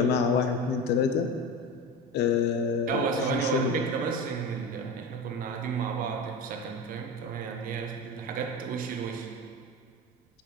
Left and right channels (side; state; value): both; normal; correlation 0.26